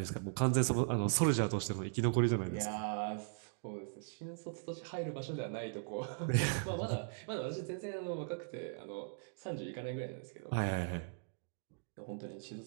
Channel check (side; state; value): left; silent; digital silence